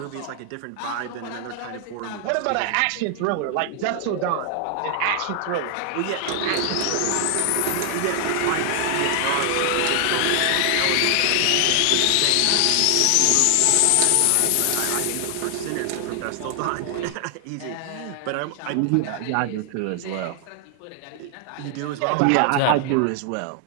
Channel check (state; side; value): different; both; correlation 0.00